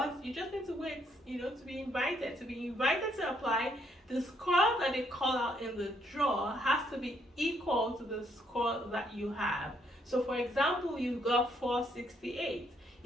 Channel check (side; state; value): both; normal; correlation 0.71